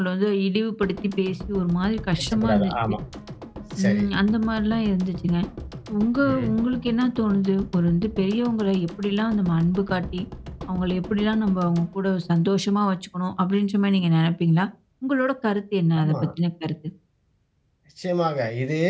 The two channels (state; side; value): identical; both; correlation 1.00